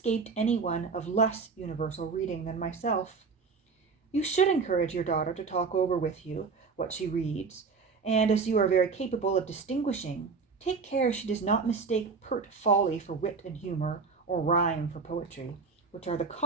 any one of less universal reading than myself. You should encourage your daughter to talk over with you what she reads, and as you are very capable of distinguishing, take care she does not mistake pert folly for wit and humor, or rhyme for poetry, which are the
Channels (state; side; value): quieter; left; 4.9 dB